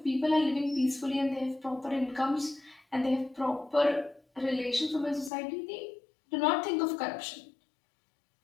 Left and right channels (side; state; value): right; drops out; at 5.3 s